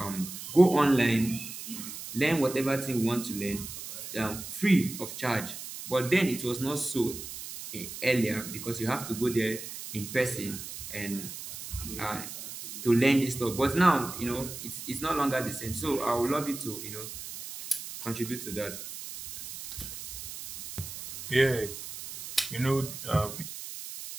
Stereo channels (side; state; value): right; noise; hiss, 10 dB below the sound